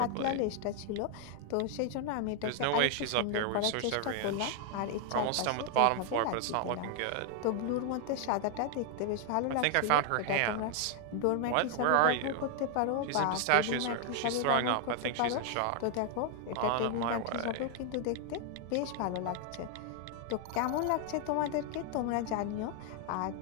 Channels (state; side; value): different; both; correlation 0.00